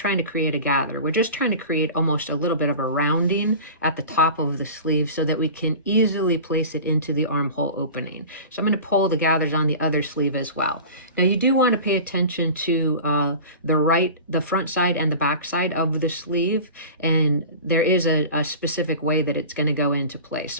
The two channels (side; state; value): both; inverted; correlation -0.36